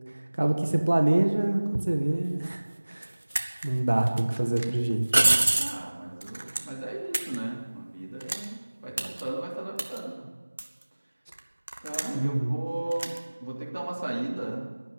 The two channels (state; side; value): inverted; both; correlation -1.00